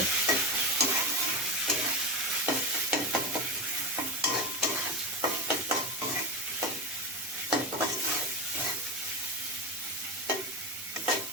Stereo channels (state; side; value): normal; both; correlation 0.18